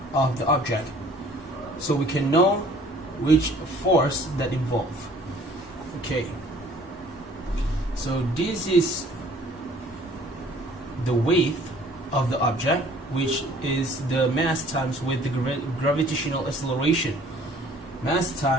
of the object, so we can know which force that involve. Okay, so this is the weight of the object, which is the mass times with the gravitational acceleration. Mass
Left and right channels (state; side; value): normal; both; correlation 0.54